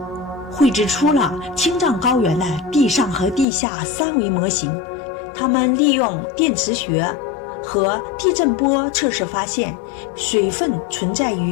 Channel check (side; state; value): right; drops out; at 3.5 s